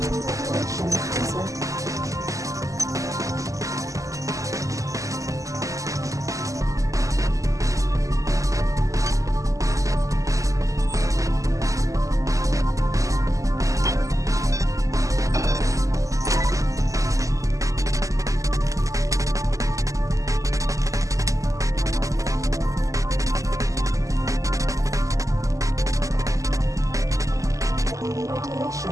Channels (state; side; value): late; left; 0.16 ms